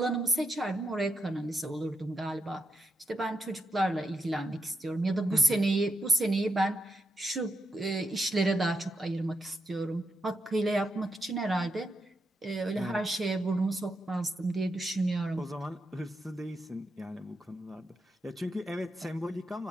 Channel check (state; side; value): normal; both; correlation 0.84